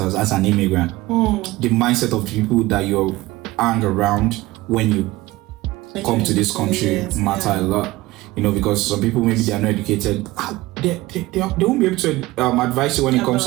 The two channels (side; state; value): left; quieter; 19.1 dB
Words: as an immigrant. The mindset of the people that you hang around when you come to this country matter a lot. Because some people, maybe they are not educated. They won't be able to advise you when it comes